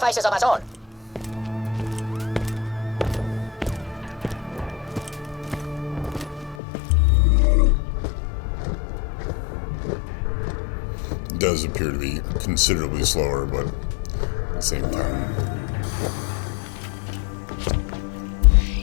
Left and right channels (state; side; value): drops out; right; at 6.6 s